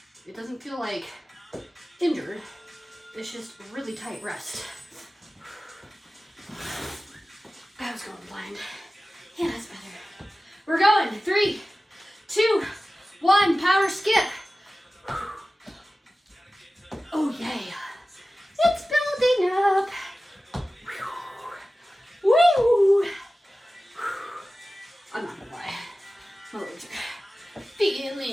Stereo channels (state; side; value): normal; both; correlation 0.96